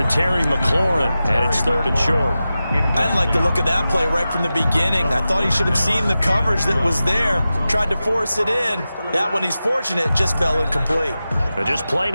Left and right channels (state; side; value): inverted; both; correlation -0.93